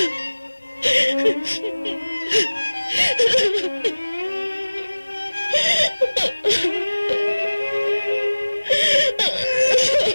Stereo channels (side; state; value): both; inverted; correlation -1.00